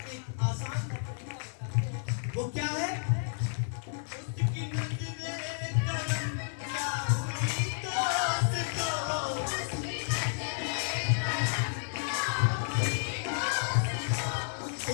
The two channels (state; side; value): silent; right; digital silence